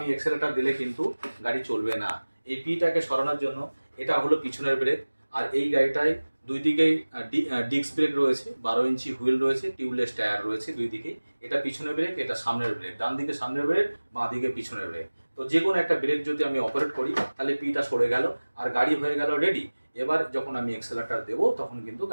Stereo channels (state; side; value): inverted; both; correlation -1.00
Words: এক্সেলেটার দিলে কিন্তু গাড়ি চলবে না। এই পিটাকে সরানোর জন্য এটা হলো পিছনের ব্রেক। আর এই গাড়িটায় দুই দিকেই ডিস্ক ব্রেক রয়েছে, 12 ইঞ্চি হুইল রয়েছে, টিউবলেস টায়ার রয়েছে দুই দিকেই। এটা পিছনের ব্রেক, এটা সামনের ব্রেক, ডান দিকে সামনের ব্রেক, বাঁ দিকে পিছনের ব্রেক। তো যে কোনো একটা ব্রেক যদি আমি অপারেট করি তাহলে পিটা সরে গেল আর গাড়ি হয়ে গেল রেডি। এবার যখন আমি এক্সেলেটার দেবো তখন কিন্তু